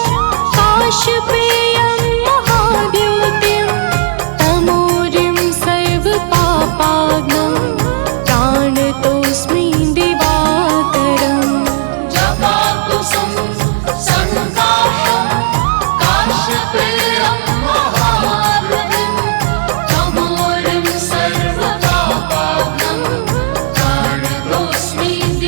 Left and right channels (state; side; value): silent; left; digital silence